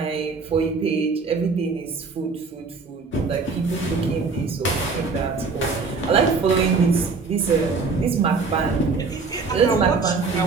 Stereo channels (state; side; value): quieter; left; 4.5 dB